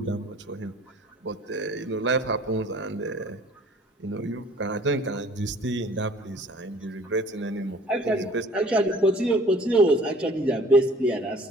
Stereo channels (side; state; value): both; normal; correlation 0.51